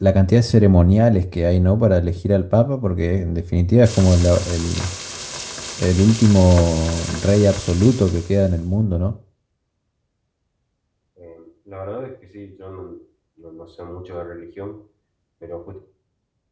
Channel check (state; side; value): identical; both; correlation 1.00